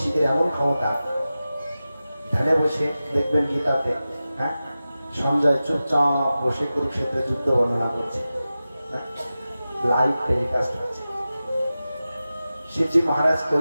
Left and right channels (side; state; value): both; inverted; correlation -0.94